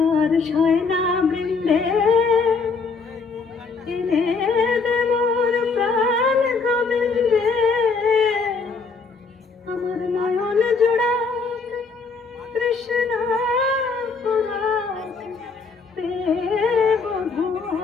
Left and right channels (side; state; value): right; quieter; 4.6 dB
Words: শয়না বৃন্দে এনে দে মোর প্রাণ গোবিন্দে, আমার নয়ন জোড়া তৃষ্ণা পুরাক দেব